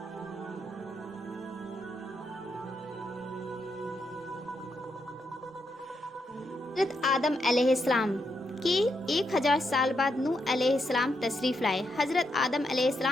حضرت آدم علیہ السلام کے 1000 سال بعد نوح علیہ السلام تشریف لائے۔ حضرت آدم علیہ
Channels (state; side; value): normal; both; correlation 0.81